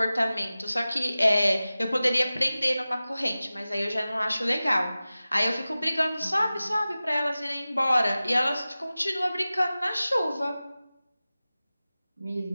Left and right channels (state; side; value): inverted; both; correlation -0.96